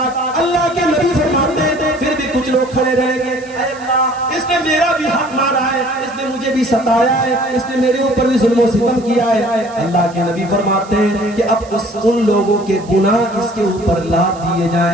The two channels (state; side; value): noise; right; hiss, 23 dB below the sound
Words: اللہ کے نبی فرماتے ہیں پھر بھی کچھ لوگ کھڑے رہیں گے، اے اللہ اس نے میرا بھی حق مارا ہے، اس نے مجھے بھی ستایا ہے، اس نے میرے اوپر بھی ظلم و ستم کیا ہے. اللہ کے نبی فرماتے ہیں کہ اب ان لوگوں کے گناہ اس کے اوپر لاد دیے